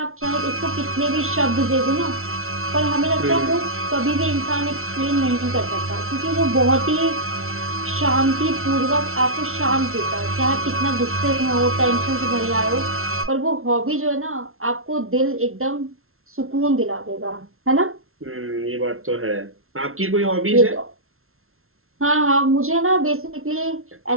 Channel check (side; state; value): left; late; 0.62 ms